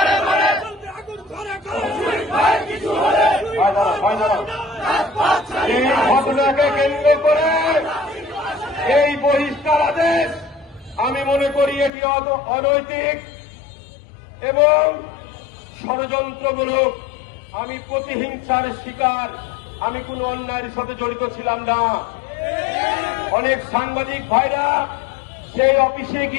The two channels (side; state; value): right; drops out; at 11.9 s